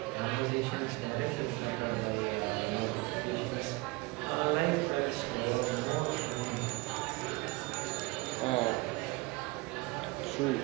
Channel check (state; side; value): quieter; left; 24.0 dB